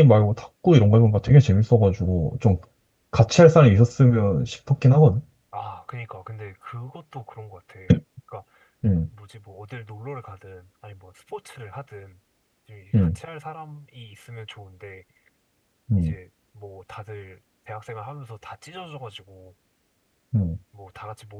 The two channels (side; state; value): both; identical; correlation 1.00